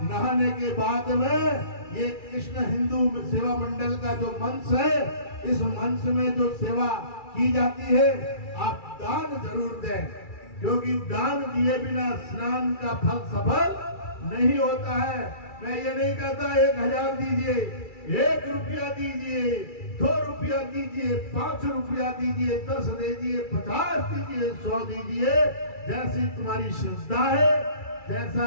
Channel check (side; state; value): right; late; 2.3 ms